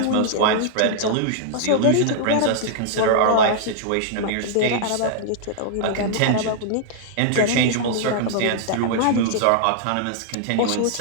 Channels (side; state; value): both; different; correlation -0.01